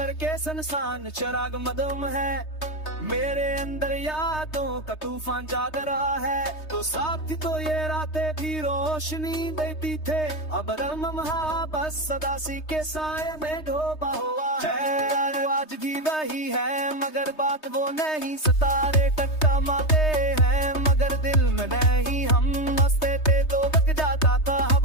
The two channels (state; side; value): late; right; 3.2 ms